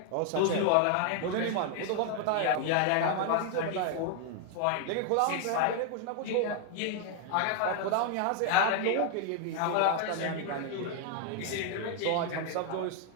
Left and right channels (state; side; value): different; both; correlation 0.00